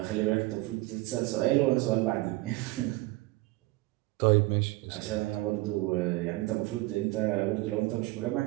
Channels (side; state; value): left; quieter; 20.7 dB